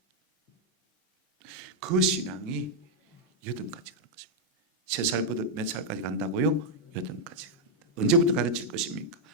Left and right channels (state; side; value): normal; both; correlation -0.03